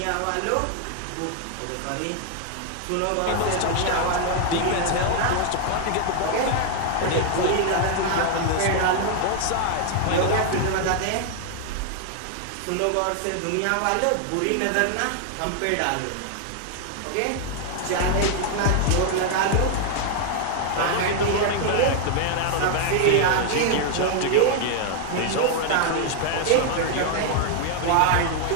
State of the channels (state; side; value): different; both; correlation 0.00